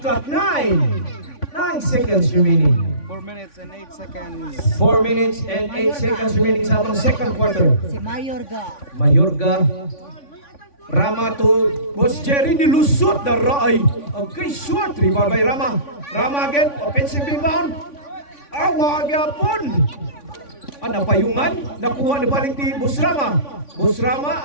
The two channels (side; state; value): right; late; 3.5 ms